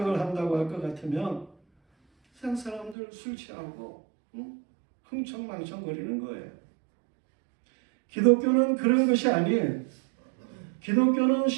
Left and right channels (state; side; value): drops out; left; at 3.0 s